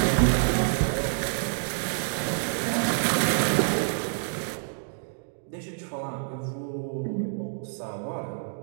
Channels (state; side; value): silent; left; digital silence